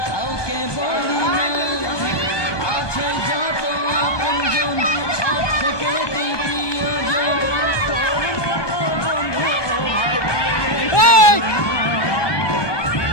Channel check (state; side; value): late; right; 1.2 ms